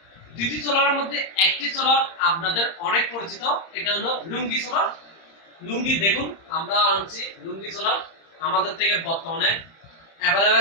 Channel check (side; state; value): right; late; 30 ms